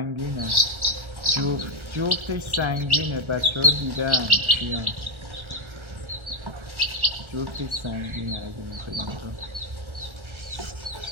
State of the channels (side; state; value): left; late; 1.3 ms